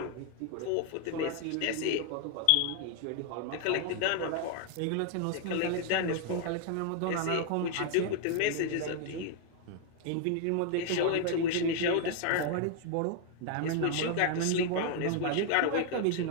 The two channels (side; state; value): both; different; correlation 0.00